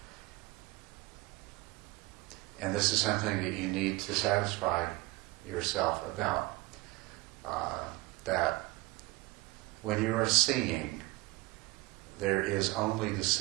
And this is something that you need to satisfy yourself about. That when you are seeing, there is only the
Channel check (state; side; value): quieter; left; 21.2 dB